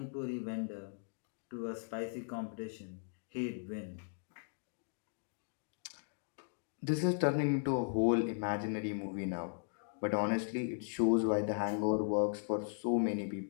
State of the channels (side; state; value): right; silent; digital silence